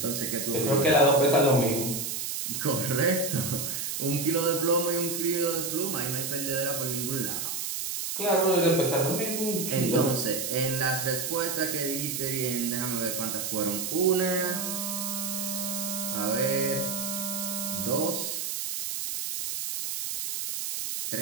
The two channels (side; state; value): right; noise; hiss, 3 dB below the sound